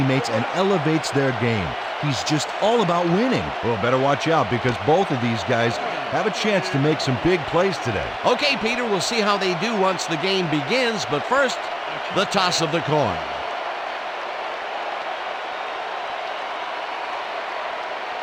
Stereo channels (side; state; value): both; identical; correlation 1.00